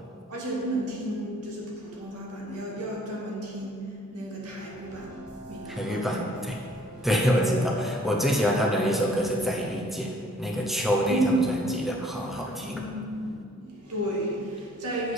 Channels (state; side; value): normal; both; correlation 0.59